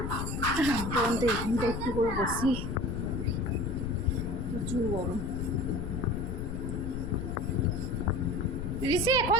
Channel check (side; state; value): left; noise; rumble, 4 dB below the sound